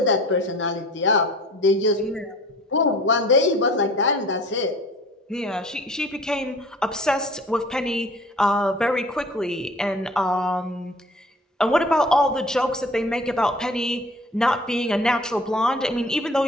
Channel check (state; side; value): normal; both; correlation 0.47